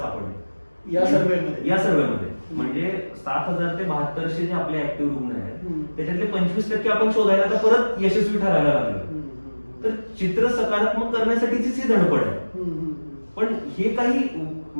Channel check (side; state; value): both; inverted; correlation -1.00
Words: या सर्व्हेमध्ये. म्हणजे 7,000 ते 7200 जे आपले ऍक्टिव्ह रुग्ण आहेत त्याच्यातले 25% आपण शोधायला तर परत यशस्वी ठरायला लागलो. तर चित्र सकारात्मक करण्यासाठीचीच ही धडपड आहे. पण हे काही